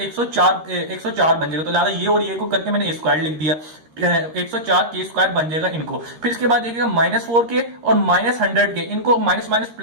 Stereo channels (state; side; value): late; left; 13 ms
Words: बन जाएगा। तो लिहाजा ये और ये को करके मैंने A स्क्वायर लिख दिया, 104 के स्क्वायर बन जाएगा इनको। फिर इसके बाद देखिएगा -4k और -100k, इनको माइनस माइनस